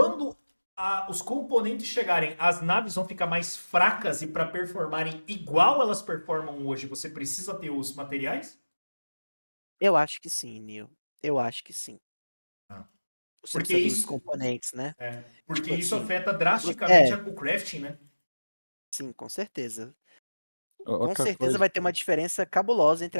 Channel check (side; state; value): both; inverted; correlation -1.00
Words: os componentes chegarem, as naves vão ficar mais fracas e para performarem igual elas performam hoje, você precisa ter os materiais? Eu acho que sim, Neil. Eu acho que sim. Ah. Você Porque precisa dos isso, componentes, né? porque Tipo isso assim, afeta drasticamente é, o crafting, né? sim, com certeza. Com Outra certeza coisa, vai ter uma diferença cabulosa entre